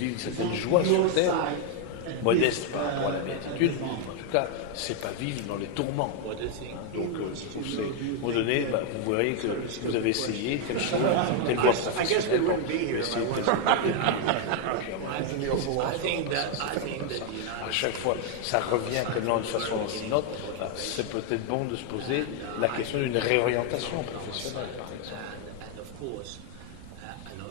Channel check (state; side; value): different; both; correlation 0.00